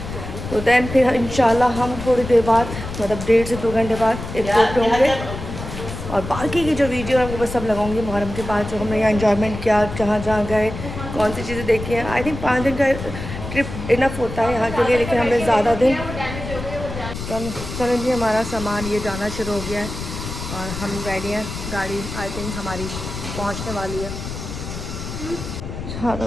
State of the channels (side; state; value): left; noise; rumble, 8 dB below the sound